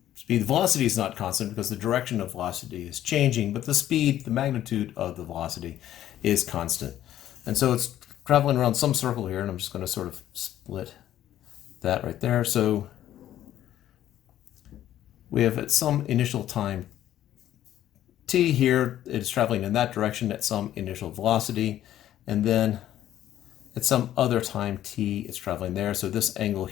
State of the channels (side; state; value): right; quieter; 12.2 dB